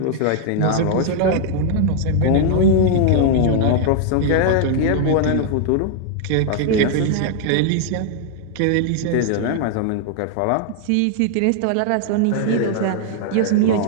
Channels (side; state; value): both; different; correlation 0.00